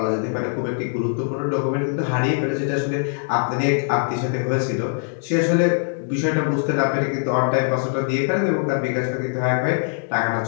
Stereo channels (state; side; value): silent; right; digital silence